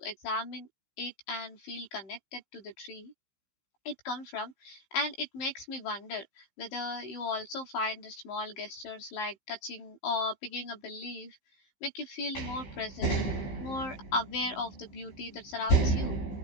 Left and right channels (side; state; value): right; late; 15 ms